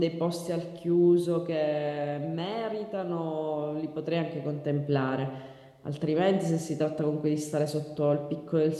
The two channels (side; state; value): both; identical; correlation 1.00